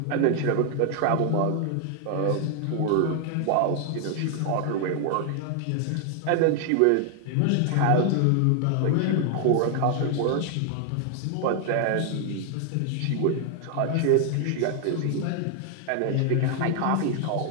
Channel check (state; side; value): different; both; correlation 0.00